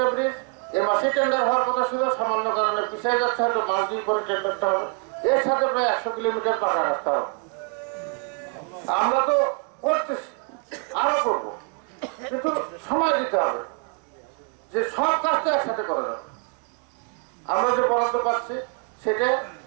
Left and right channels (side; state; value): left; quieter; 35.3 dB